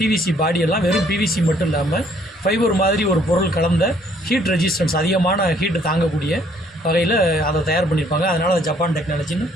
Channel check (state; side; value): normal; both; correlation 0.63